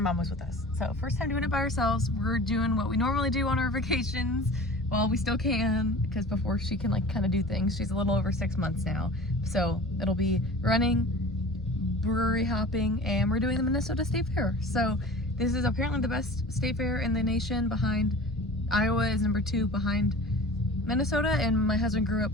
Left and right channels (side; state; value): both; normal; correlation 0.39